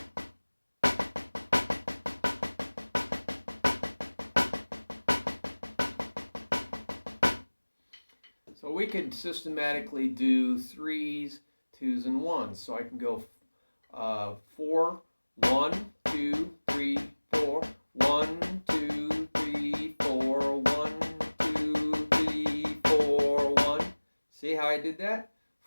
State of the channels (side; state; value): both; inverted; correlation -1.00